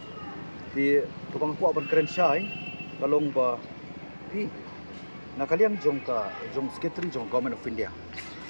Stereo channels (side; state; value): both; inverted; correlation -1.00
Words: di tubang po ban keren syai kalong ba di nakaliang jong secretary jong government of India